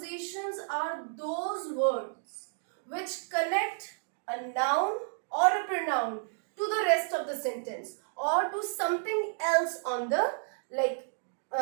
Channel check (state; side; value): silent; left; digital silence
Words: are those words which connect a noun or a pronoun to the rest of the sentence or to something else on the